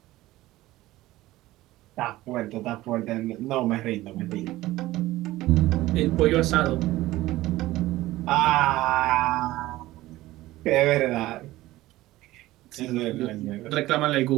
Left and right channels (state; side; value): quieter; left; 17.0 dB